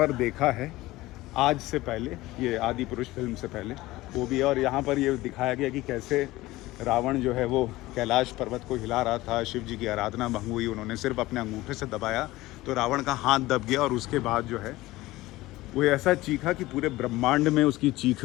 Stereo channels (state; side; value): quieter; right; 18.3 dB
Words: देखा है आज से पहले, ये आदि पुरुष फिल्म से पहले वो भी है। और यहाँ पर ये दिखाया गया कि कैसे रावण जो है वो कैलाश पर्वत को हिला रहा था, शिव जी की आराधना भंग हुई, उन्होंने सिर्फ अपने अंगूठे से दबाया तो रावण का हाथ दब गया और उसके बाद जो है वो ऐसा चीखा कि पूरे ब्रह्मांड में उसकी